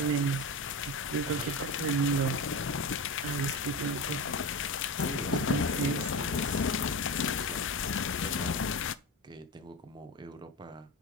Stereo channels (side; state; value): both; normal; correlation 0.23